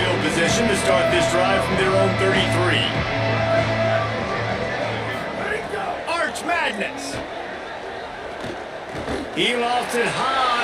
position to start this drive from their own 33. Madness. He lofts it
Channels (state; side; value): identical; both; correlation 1.00